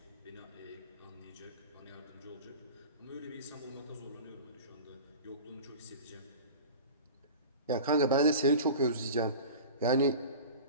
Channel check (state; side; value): inverted; both; correlation -0.35